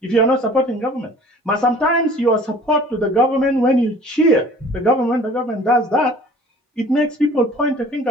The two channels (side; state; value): both; normal; correlation 0.49